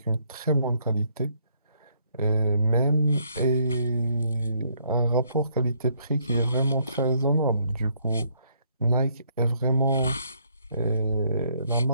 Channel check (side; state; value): both; inverted; correlation -0.70